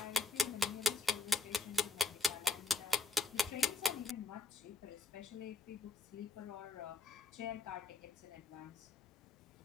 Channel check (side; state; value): right; quieter; 3.6 dB